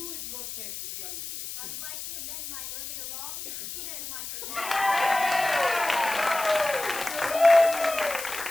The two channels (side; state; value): left; noise; hiss, 8 dB below the sound